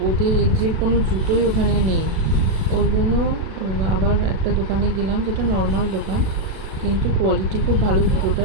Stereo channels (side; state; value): left; late; 37 ms